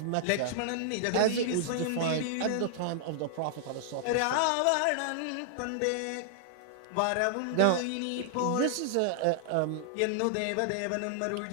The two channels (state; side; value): different; both; correlation -0.01